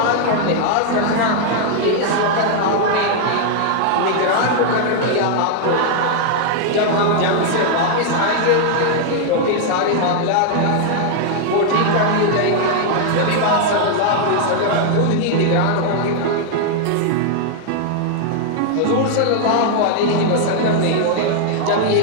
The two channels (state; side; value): different; both; correlation 0.00